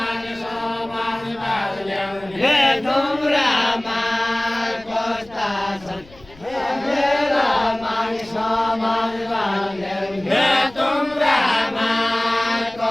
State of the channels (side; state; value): left; noise; rumble, 24 dB below the sound